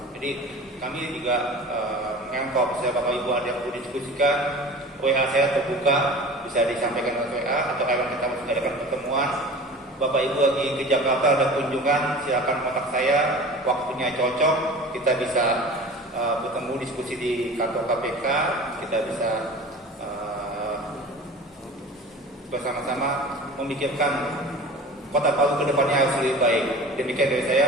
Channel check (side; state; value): both; normal; correlation 0.38